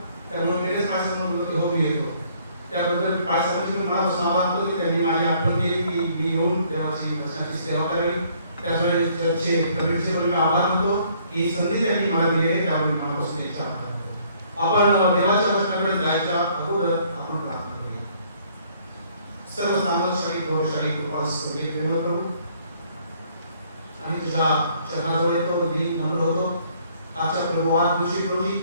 त्यामुळे लगेच माझ्यासमोर बोलतो हो मी येतो. त्याबद्दल काय सेवांचे मी मनापासून आभार मानतो की त्यांनी माझी आठवण केली की मी येऊन देवाची वचनाची सेवा करावी. त्याचवेळी चर्चचे कमिटीचे मी आभार मानतो की संधी त्यांनी मला दिली आहे, त्यामुळे मनापासून त्यांचा आभार मानतो. आपण देवाच्या वचनाकडे जायच्या अगोदर आपण प्रार्थना करूया. सर्व सामर्थ्यशाली गौरवशाली कृपाळू स्वर्गीय प्रेमळ प्रभू, आणि तुझ्या चरणाजवळ येतो, मी नम्र होतो. आजच्या प्रभू आज दिवशी रोजी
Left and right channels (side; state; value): both; inverted; correlation -0.63